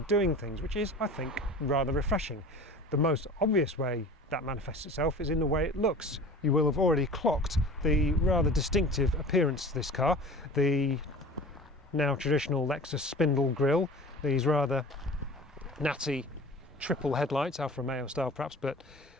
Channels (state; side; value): normal; both; correlation 0.39